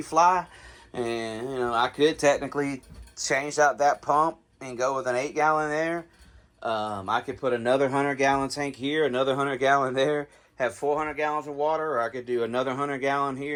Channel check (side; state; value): both; identical; correlation 1.00